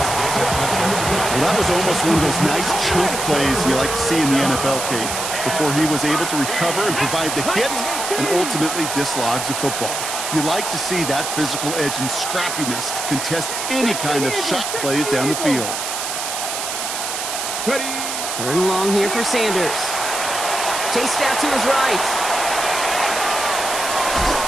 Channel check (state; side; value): noise; right; hiss, 4 dB below the sound